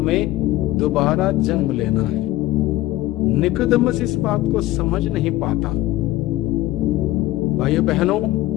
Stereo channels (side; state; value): right; quieter; 16.6 dB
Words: दोबारा जन्म लेना है। निकोदेमुस इस बात को समझ नहीं पाता। भाइयों बहनों,